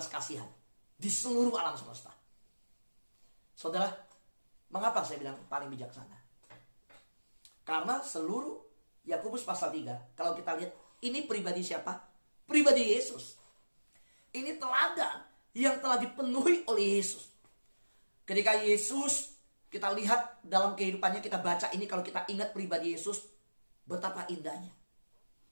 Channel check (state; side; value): inverted; both; correlation -1.00